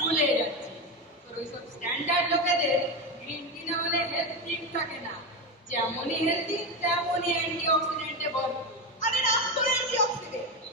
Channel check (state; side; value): normal; both; correlation 0.15